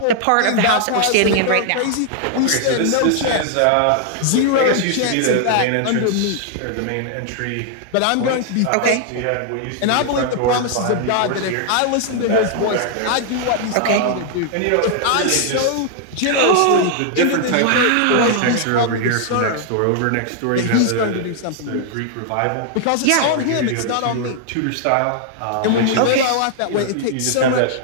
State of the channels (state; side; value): different; both; correlation 0.00